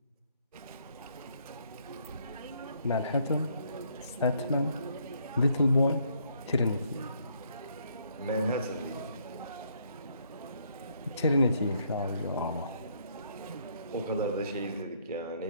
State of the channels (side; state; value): both; inverted; correlation -0.68